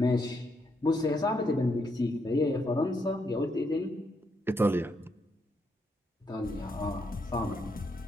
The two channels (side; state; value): both; normal; correlation 0.77